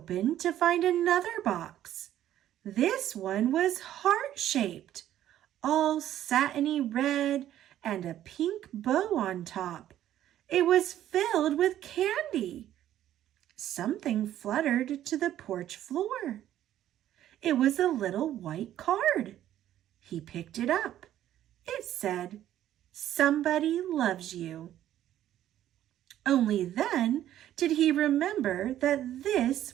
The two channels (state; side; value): quieter; left; 12.1 dB